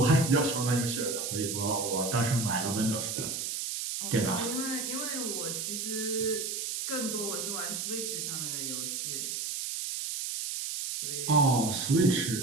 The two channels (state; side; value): noise; right; hiss, 3 dB below the sound